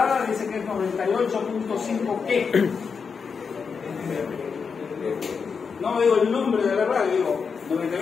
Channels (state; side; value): quieter; right; 5.7 dB